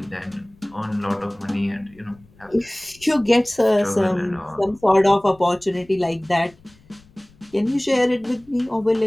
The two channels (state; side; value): noise; left; rumble, 28 dB below the sound